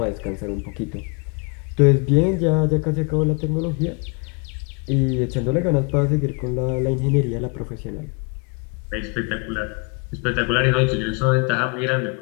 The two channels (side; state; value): right; quieter; 32.3 dB